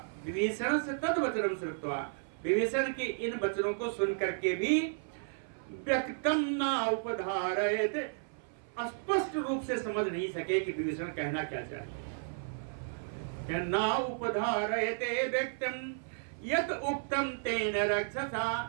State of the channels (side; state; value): left; silent; 56 dB below the other